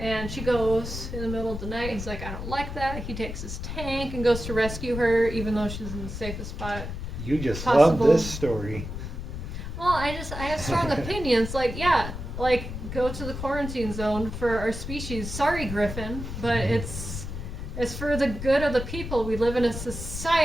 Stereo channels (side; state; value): left; noise; rumble, 7 dB below the sound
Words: she goes in the middle of the night. He's like, I don't like that. He takes his tank and goes to rescue her, even though she's in the safest spot. You just possible. love this story. Well, I have strong opinions. Like, go to the quarantine zone for our species. Sorry, Griffin, but it's for the good of the people. We live in a